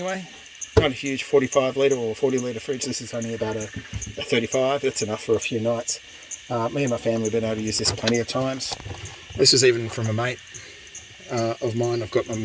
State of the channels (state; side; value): identical; both; correlation 1.00